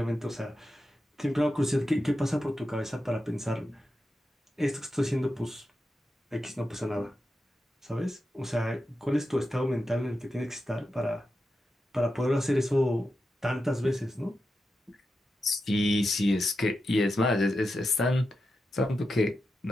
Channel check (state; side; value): normal; both; correlation 0.89